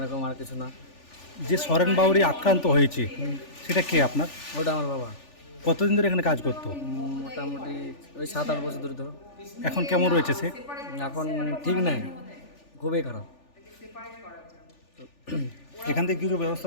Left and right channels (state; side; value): late; right; 3.4 ms